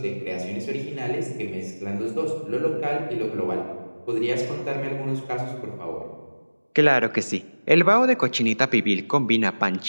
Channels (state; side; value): inverted; both; correlation -1.00